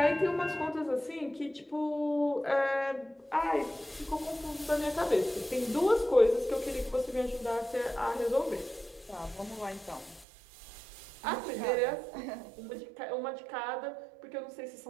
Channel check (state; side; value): drops out; left; at 10.2 s